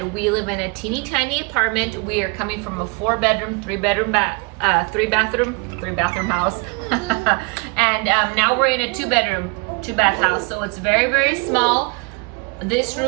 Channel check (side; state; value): left; quieter; 30.6 dB